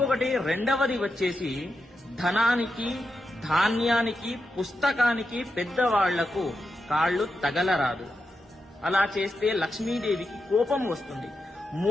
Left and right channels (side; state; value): both; normal; correlation 0.87